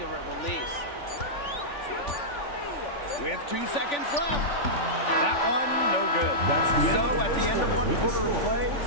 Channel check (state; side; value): late; right; 3.5 ms